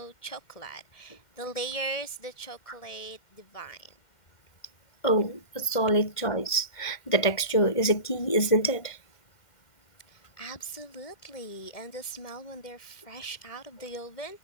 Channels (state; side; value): late; right; 2.1 ms